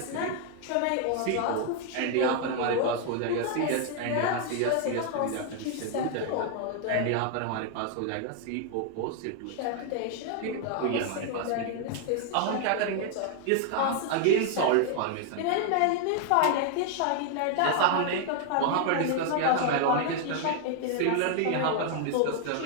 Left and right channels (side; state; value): both; different; correlation 0.00